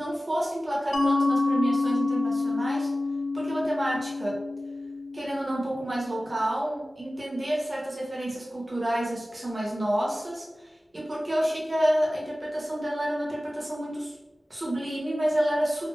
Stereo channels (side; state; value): both; normal; correlation 0.96